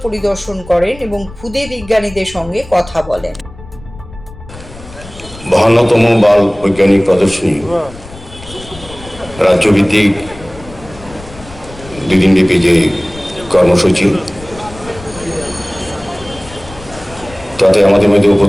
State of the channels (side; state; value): left; noise; rumble, 17 dB below the sound